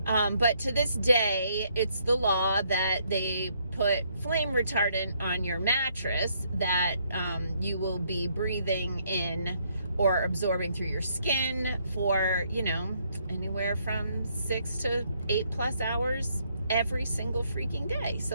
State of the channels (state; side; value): inverted; both; correlation -0.71